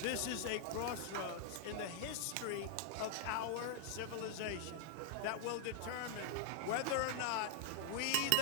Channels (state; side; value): different; both; correlation 0.00